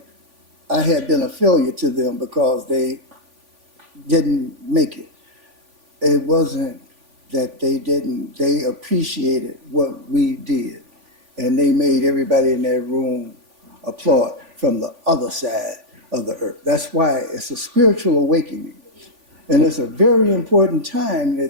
I had been a failure to them because they didn't make it. It wasn't that they didn't, they appreciated what we did. And they made everybody in that room applaud from the other side of the earth. That's why it's a spiritual awakening. And it's a very important time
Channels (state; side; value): late; left; 3.5 ms